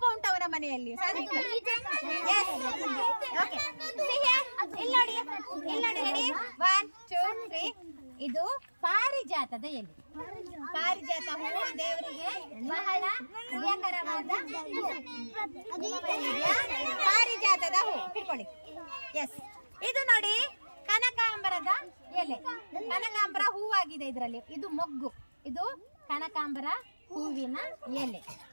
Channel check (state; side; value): inverted; both; correlation -1.00